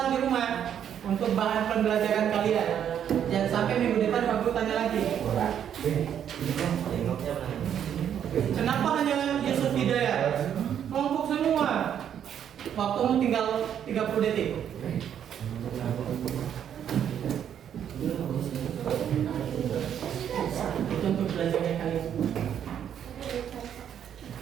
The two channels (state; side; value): quieter; left; 9.2 dB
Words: di rumah untuk bahan pembelajaran kalian. Jangan sampai minggu depan Pak Guru tanya lagi. Kenapa hanya Yusuf Hidayat? Kelompok semua. Waktumu tinggal 30 detik. Itu untuk belajarnya kalian.